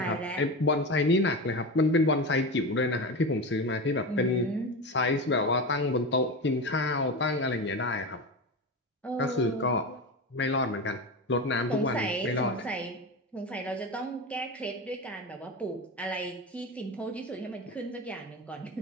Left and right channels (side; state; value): both; normal; correlation 0.23